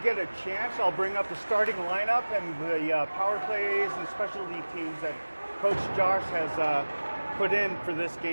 a chance, I'll bring up the starting lineup and the power plays and specialty teams that Coach Josh has put in for this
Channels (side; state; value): both; inverted; correlation -1.00